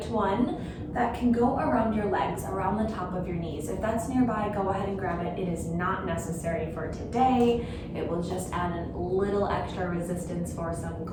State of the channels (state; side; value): identical; both; correlation 1.00